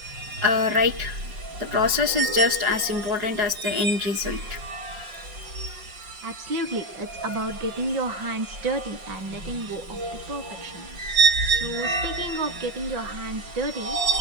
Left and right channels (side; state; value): left; late; 5.4 ms